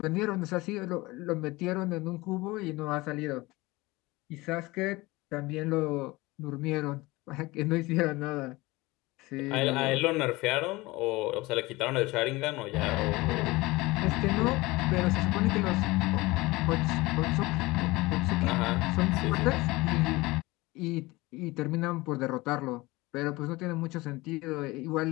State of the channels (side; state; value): right; quieter; 21.4 dB